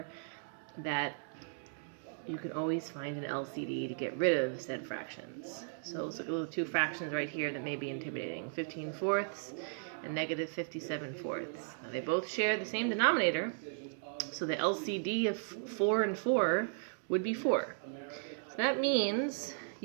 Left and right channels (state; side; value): silent; left; digital silence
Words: that you can always find an LCD to get rid of said fractions. So let's look at the two fractions right here that may be intimidating, 15/4 and negative 57/4. Now they both share the same denominator, so the LCD of 4 and 4 would be 4. So that means